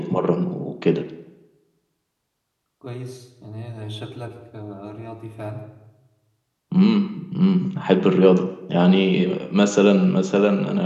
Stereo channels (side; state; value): both; identical; correlation 1.00